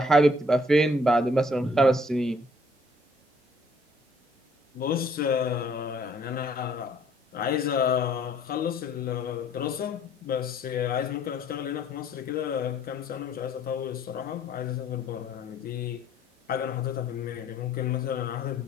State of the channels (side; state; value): both; normal; correlation 0.61